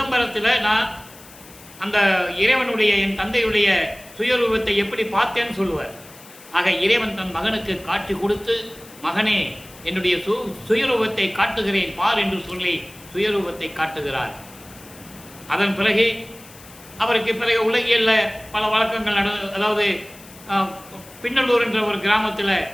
நான் அந்த இறைவனுடைய என் தந்தையுடைய சுயரூபத்தை எப்படி பார்த்தேன்னு சொல்லுவார். ஆக இறைவன் தன் மகனுக்கு காட்சி கொடுத்து, மகனே என்னுடைய சுயரூபத்தை காட்டுகிறேன் பார் என்று சொல்லி சுயரூபத்தை காட்டுகிறார். அதன் பிறகு அவருக்கு பிறகு உலகியலில் பல வழக்கங்கள் அதாவது பின்னலூர் என்ற ஒரு கிராமத்தில்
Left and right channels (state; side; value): noise; left; hiss, 21 dB below the sound